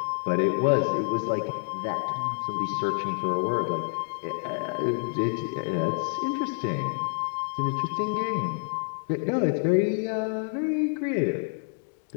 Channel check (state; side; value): silent; right; digital silence